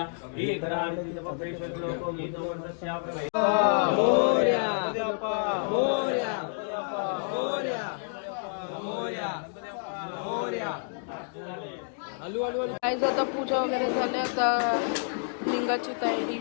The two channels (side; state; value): right; silent; digital silence